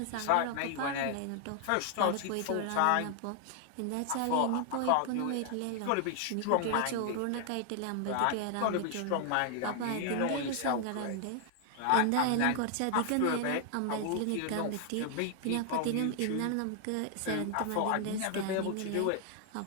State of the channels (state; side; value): different; both; correlation 0.00